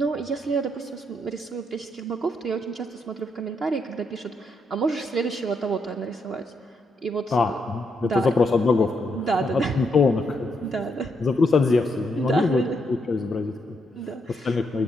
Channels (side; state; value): both; normal; correlation 0.78